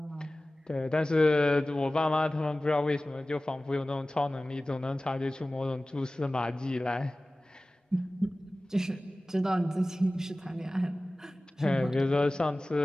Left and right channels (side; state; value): both; normal; correlation 0.97